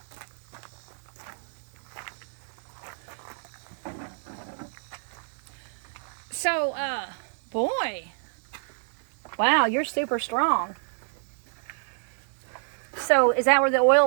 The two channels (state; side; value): silent; left; 59 dB below the other